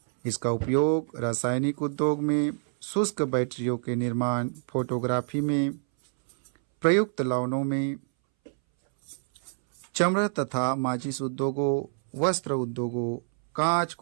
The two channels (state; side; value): silent; left; 60 dB below the other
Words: इसका उपयोग रासायनिक उद्योग में, शुष्क बैटरियों के निर्माण, फोटोग्राफी में, प्रयुक्त लवणों में, चमड़ा तथा माचिस उद्योगों, वस्त्र उद्योगों, कांच